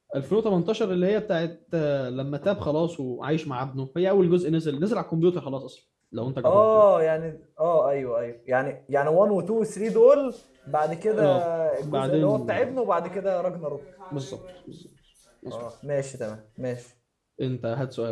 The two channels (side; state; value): both; identical; correlation 1.00